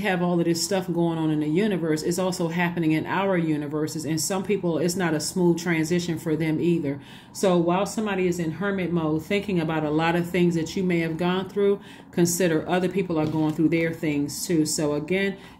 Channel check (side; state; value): both; identical; correlation 1.00